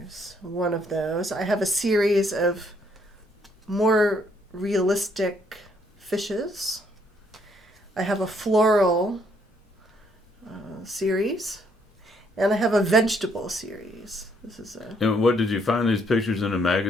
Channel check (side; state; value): both; normal; correlation 0.69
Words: one of those. I have a series of more realistic fishes. I have a floral series. And I have a vegetable series. This is a... And what, did you find these pictures in a